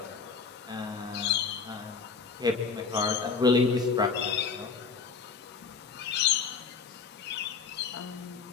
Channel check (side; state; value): right; quieter; 5.3 dB